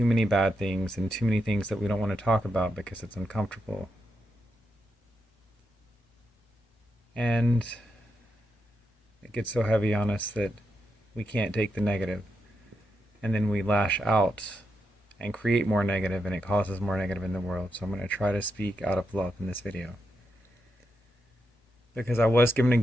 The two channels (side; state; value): both; normal; correlation 0.85